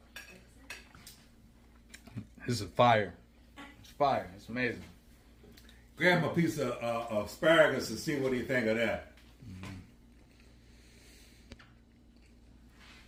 This is fire. It's fire. It's amazing. Grab him a piece of asparagus and see what he think of that.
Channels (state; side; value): identical; both; correlation 1.00